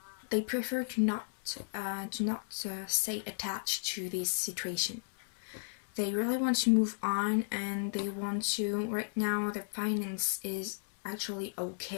they prefer to not stay attached to this situation. They really want to move on, and they want to. Right now, their finance is actually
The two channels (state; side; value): silent; right; digital silence